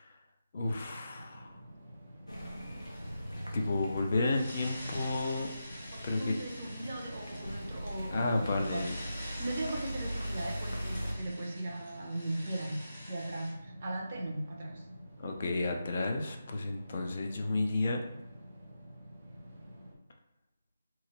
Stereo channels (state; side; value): inverted; both; correlation -0.88